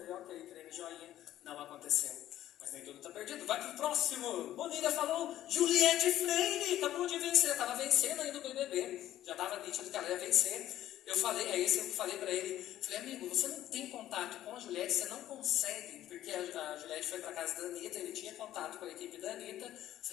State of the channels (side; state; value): right; quieter; 13.0 dB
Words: ok, treino joinha. Não aconteceu. Mas nem tudo tá perdido. Vai pro próximo. Bonilha falou, Juliette Freire acabou de vencer. Tava vencendo ainda o BBB. Já tava nítido que ela ia vencer. Eu falei, eu falei pra ele, falei, amigo, você não tem contato com a Juliette, você não consegue, porque a Juliette foi pra casa da Anitta, ele tinha contato com a equipe da Anitta. Eu